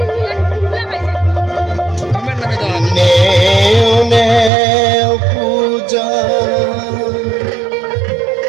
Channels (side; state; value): left; drops out; at 4.5 s